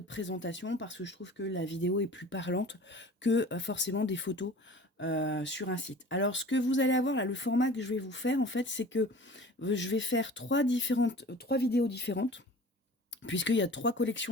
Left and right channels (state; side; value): normal; both; correlation 0.42